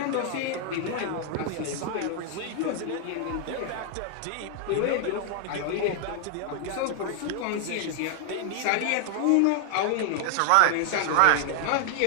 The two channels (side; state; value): both; different; correlation 0.00